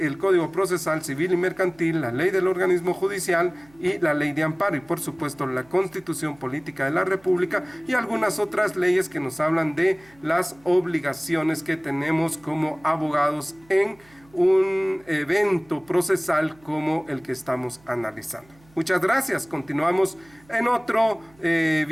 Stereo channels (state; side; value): noise; right; hum, 29 dB below the sound